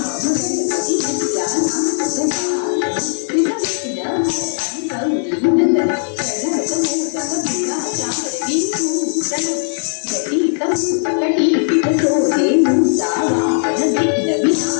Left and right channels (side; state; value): right; silent; digital silence